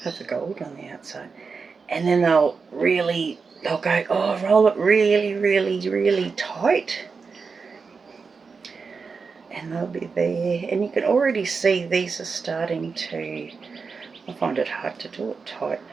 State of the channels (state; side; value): quieter; left; 5.0 dB